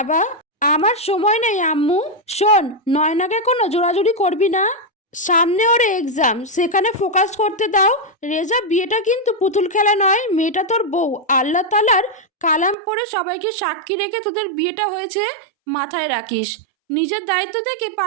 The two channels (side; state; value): left; drops out; at 12.8 s